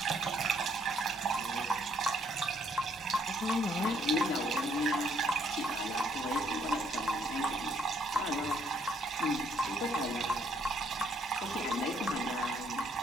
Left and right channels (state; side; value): normal; both; correlation 0.68